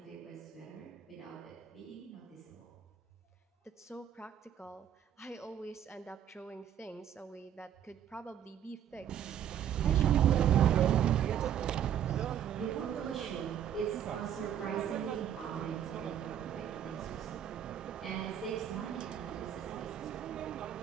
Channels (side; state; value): left; quieter; 9.8 dB